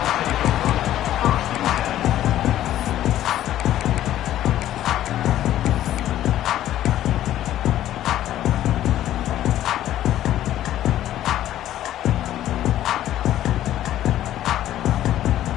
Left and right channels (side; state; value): right; quieter; 12.7 dB